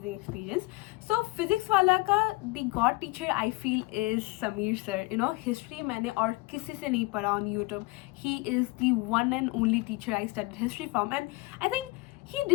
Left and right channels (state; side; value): quieter; right; 22.6 dB